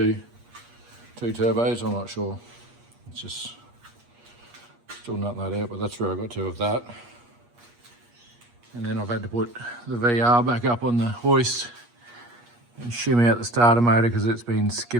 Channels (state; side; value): late; left; 8.4 ms